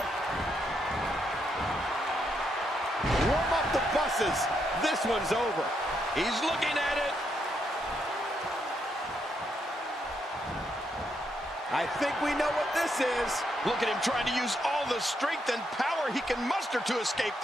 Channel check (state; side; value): normal; both; correlation 0.78